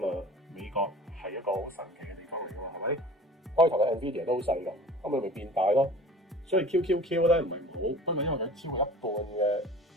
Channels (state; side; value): normal; both; correlation 0.43